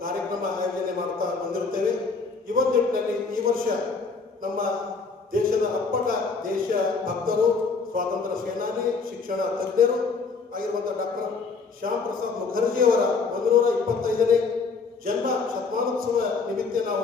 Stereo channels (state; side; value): quieter; right; 4.6 dB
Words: ಕಾರ್ಯಕ್ರಮ ಆಯೋಜನೆ ಮಾಡ್ತಾ ಬಂದಿರುತ್ತೇವೆ. ನಿಟ್ಟಿನಲ್ಲಿ ಈ ವರ್ಷ ನಮ್ಮ ದೇಶದ ಅಪ್ಪಟ ದೇಶ ಭಕ್ತರು, ಸ್ವಾತಂತ್ರ್ಯ ಸೇನಾನಿ, ಶಿಕ್ಷಣ ತಜ್ಞರು ಆಗಿರುವಂತಹ ಡಾಕ್ಟರ್ ಶ್ಯಾಮ್ ಪ್ರಸಾದ್ ಮುಖರ್ಜಿಯವರ 125ನೇ ಜನ್ಮ ಶತಮಾನೋತ್ಸವ ನಿಮಿತ್ತ